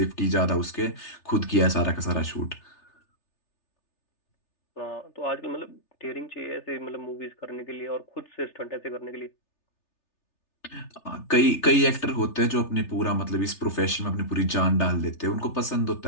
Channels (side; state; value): right; late; 3.4 ms